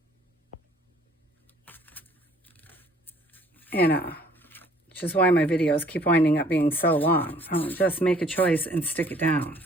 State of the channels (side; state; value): both; normal; correlation 0.58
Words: And, which is why my videos keep winding up being so long. I'll just make a choice and stick it down.